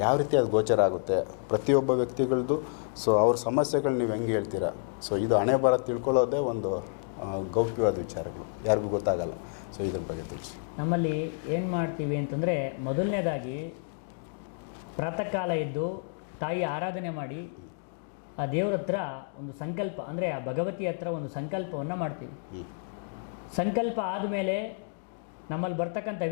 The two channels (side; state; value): right; silent; digital silence